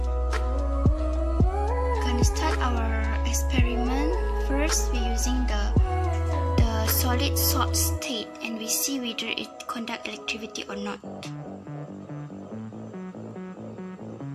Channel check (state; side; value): identical; both; correlation 1.00